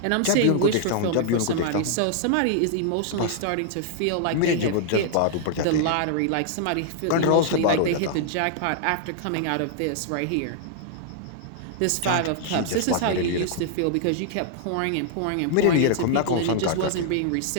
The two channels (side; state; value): both; different; correlation -0.01